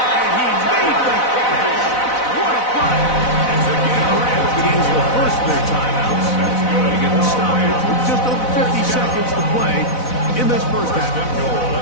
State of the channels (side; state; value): right; late; 4.0 ms